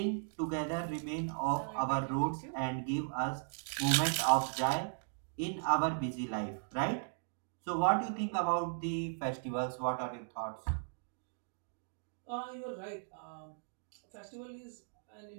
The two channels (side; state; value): left; silent; digital silence